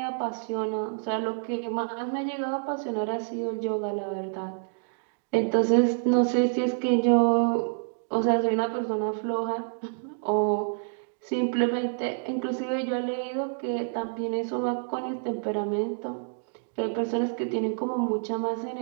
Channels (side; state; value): left; silent; digital silence